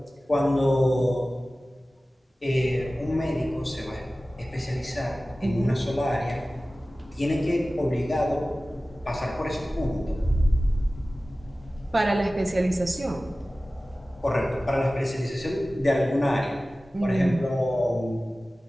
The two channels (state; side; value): normal; both; correlation 0.97